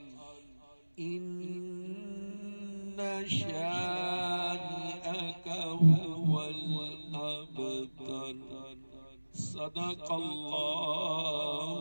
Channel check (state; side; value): inverted; both; correlation -1.00